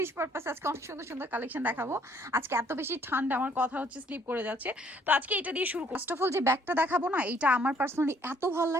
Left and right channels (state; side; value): normal; both; correlation 0.64